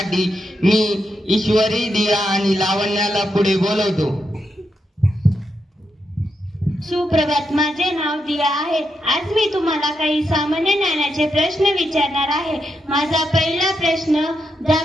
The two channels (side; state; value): both; normal; correlation 0.83